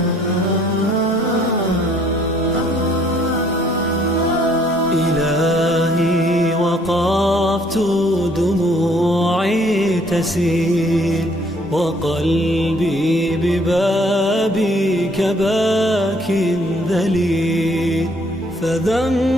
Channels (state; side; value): normal; both; correlation 0.63